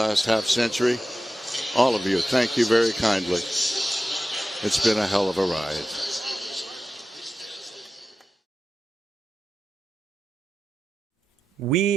half century. All of you, thank you very kindly. It's been a hell of a ride.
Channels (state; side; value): normal; both; correlation 0.93